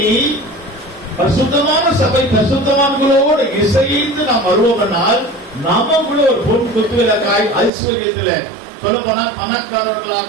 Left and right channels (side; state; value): left; drops out; at 7.7 s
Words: பரிசுத்தமான சபை பரிசுத்தவான்களோடு இசைந்து நாம் வருவோம்னால் நமக்குள்ள ஒரு பொன் குத்துவிளக்காய் ஐஸ்வர்யத்துல சொல்ல போனா